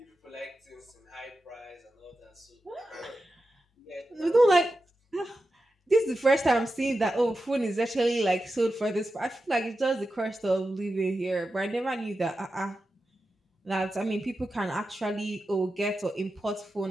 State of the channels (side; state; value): both; normal; correlation 0.91